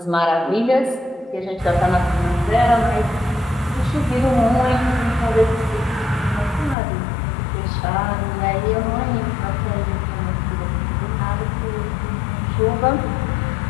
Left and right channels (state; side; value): drops out; right; at 6.8 s